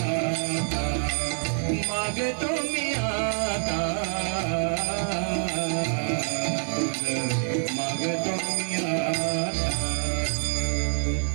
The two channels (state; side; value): silent; left; digital silence